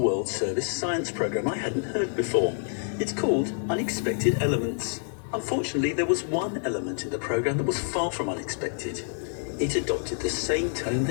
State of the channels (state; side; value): silent; right; 60 dB below the other